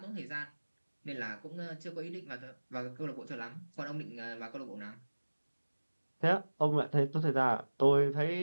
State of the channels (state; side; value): inverted; both; correlation -1.00